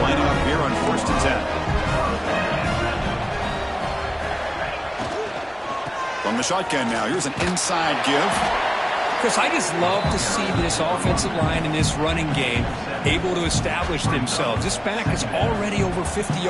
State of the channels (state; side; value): identical; both; correlation 1.00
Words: lining up here on 1st and 10. From the shotgun now, here's an inside give. Chris, I just love to see this offensive line in this running game able to establish themselves. This back is already over 50